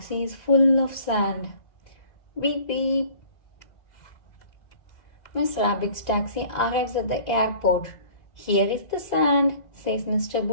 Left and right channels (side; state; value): right; late; 2.0 ms